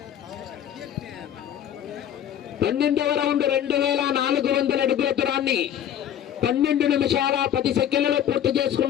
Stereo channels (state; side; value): quieter; right; 10.2 dB